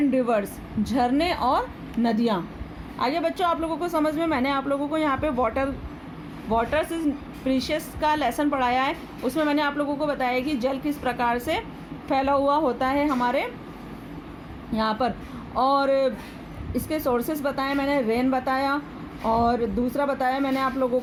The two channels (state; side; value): identical; both; correlation 1.00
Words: रिवर्स, झरने और नदियाँ। आगे बच्चों आप लोगों को समझ में, मैंने आप लोगों को यहाँ पे वाटर्स इज प्रीशियस का लेसन पढ़ाया है। उसमें मैंने आप लोगों को बताया कि जल किस प्रकार से फैला हुआ होता है हमारे यहाँ पर, और इसके सोर्सेस बताए मैंने, रेन बताया, और दूसरा बताया मैंने आप लोगों